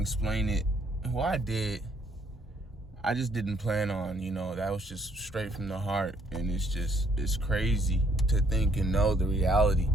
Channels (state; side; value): normal; both; correlation 0.67